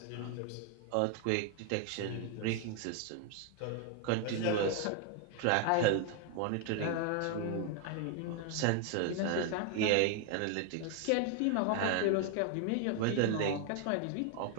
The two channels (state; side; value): different; both; correlation 0.00